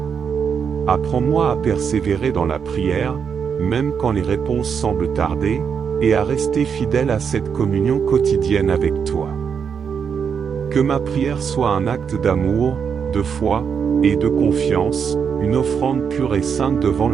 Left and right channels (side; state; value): left; quieter; 6.8 dB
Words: Apprends-moi à persévérer dans la prière, même quand les réponses semblent tarder, et à rester fidèle à cette communion quotidienne avec toi. Que ma prière soit un acte d'amour, de foi, et de confiance, une offrande pure et sainte devant